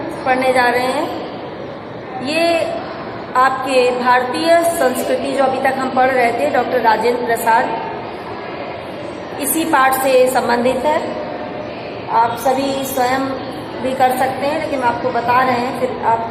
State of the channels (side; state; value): both; identical; correlation 1.00